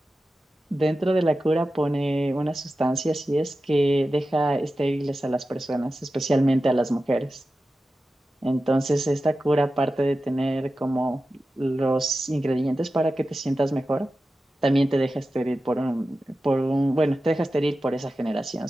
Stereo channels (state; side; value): normal; both; correlation 0.93